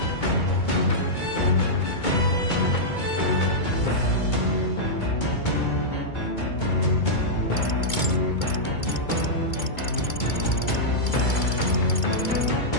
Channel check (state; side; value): late; right; 2.2 ms